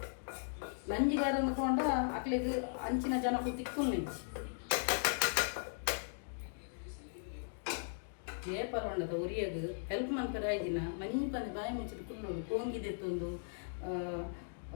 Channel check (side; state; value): right; silent; digital silence